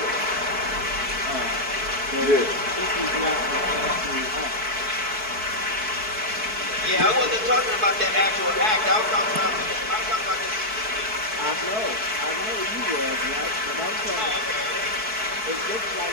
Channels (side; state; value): left; late; 4.6 ms